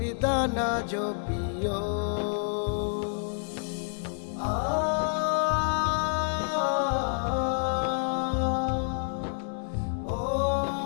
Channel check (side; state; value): right; silent; 58 dB below the other